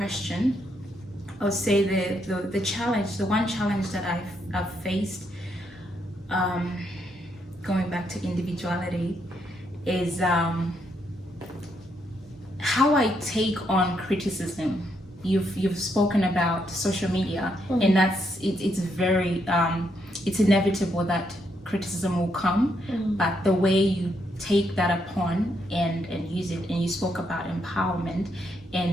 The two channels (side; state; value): both; normal; correlation 0.77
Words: I'll say the challenge, the one challenge that I've faced, going back to individuality, is how I take on criticism. You've spoken about social media, and it's very it's inevitable that criticism will come, but the way you take that upon and use it, and you spoke about empowerment